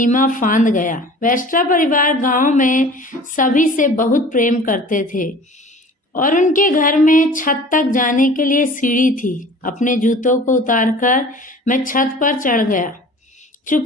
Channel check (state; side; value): normal; both; correlation 0.44